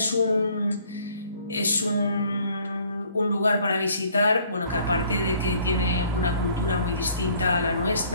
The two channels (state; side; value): inverted; both; correlation -0.59